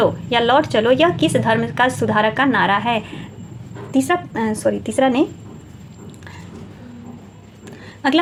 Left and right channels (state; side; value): identical; both; correlation 1.00